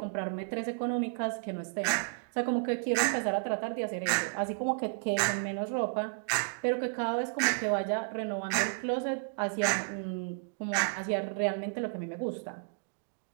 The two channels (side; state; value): left; silent; digital silence